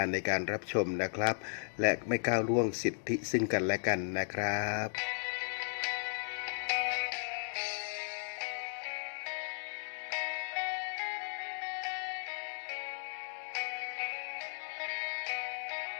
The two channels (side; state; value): right; silent; digital silence